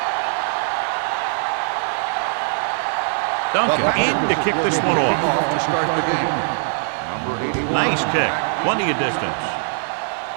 Duncan in to kick this one off. To start the game. Number 81. Nice kick. Plenty of distance.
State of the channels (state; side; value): silent; left; digital silence